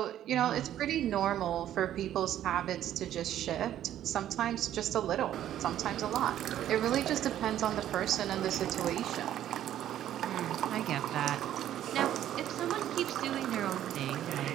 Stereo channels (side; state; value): left; quieter; 11.7 dB